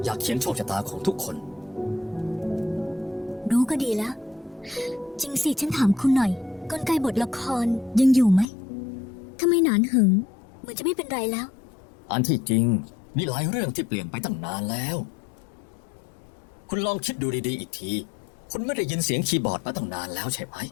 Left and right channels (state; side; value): drops out; right; at 8.5 s